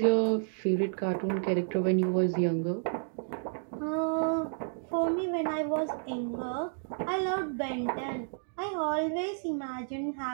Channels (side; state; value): left; silent; digital silence